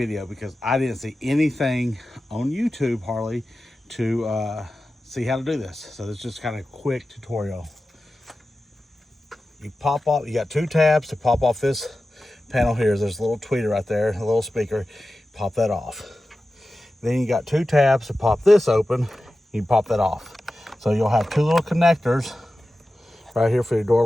because I didn't see anything on YouTube hardly to see how to do this. So this is just kind of a quick tutorial. You pop off, you got two tabs to pop off this panel here. There's a little tweeter right there, a little speaker. Pop that off. Then you got two tabs to pop this open. You pop that off. So you'll have two little connectors right here for your door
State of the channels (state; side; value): normal; both; correlation 0.94